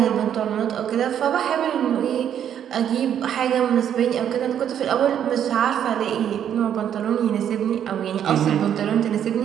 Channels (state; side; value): quieter; left; 9.5 dB